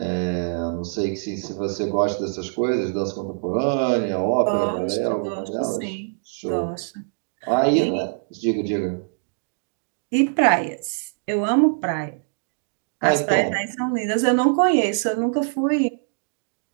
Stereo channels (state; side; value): silent; left; digital silence